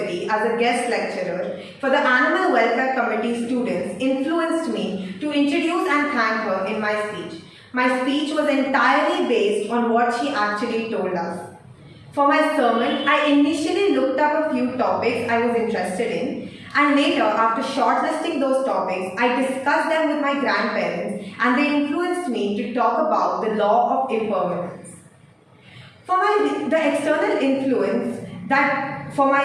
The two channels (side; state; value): both; identical; correlation 1.00